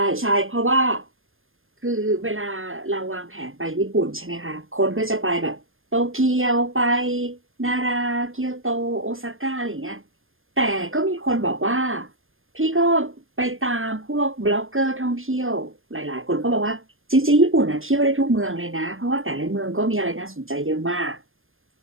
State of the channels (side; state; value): left; late; 0.60 ms